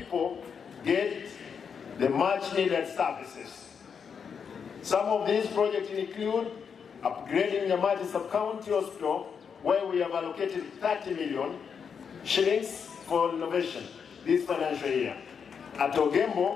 get the much-needed services. Some of these projects include upgrading the Nyamati sub-county hospital, where we have allocated 30 million shillings for innovation this financial year. At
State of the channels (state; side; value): quieter; right; 6.6 dB